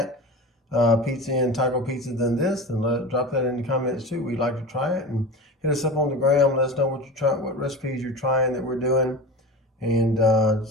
pizza and taco pizza than this, then drop that in the comments too. We'd like to try it, and hit us up on the gram. Let us know what you're trying, what recipes you're trying that we're doing, and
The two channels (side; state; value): both; normal; correlation 0.30